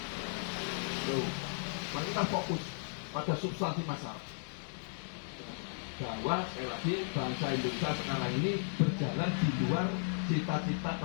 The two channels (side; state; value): right; silent; digital silence